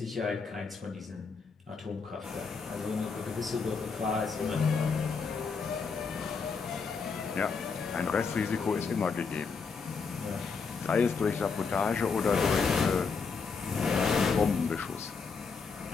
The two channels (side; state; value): right; quieter; 5.1 dB